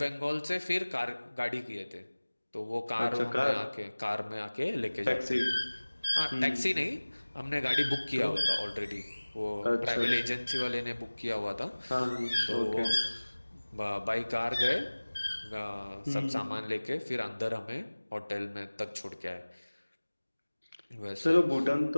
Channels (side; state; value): both; inverted; correlation -1.00